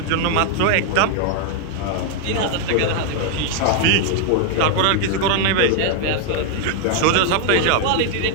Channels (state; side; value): different; both; correlation 0.00